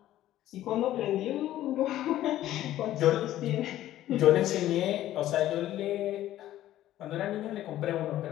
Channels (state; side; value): quieter; right; 13.5 dB